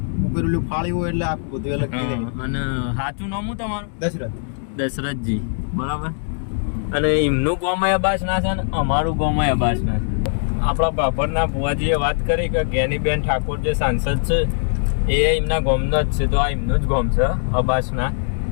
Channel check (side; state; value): right; silent; digital silence